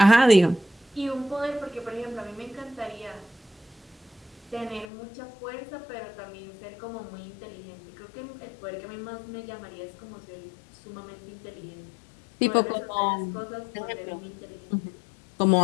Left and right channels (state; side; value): drops out; right; at 4.9 s